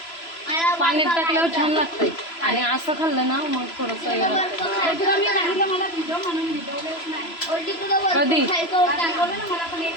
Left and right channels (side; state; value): right; late; 3.0 ms